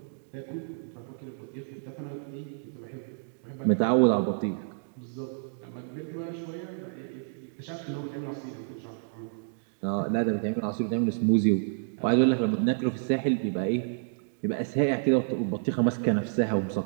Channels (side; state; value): left; silent; digital silence